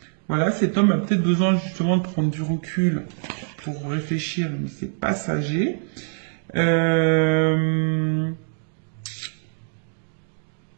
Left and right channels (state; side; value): silent; left; 63 dB below the other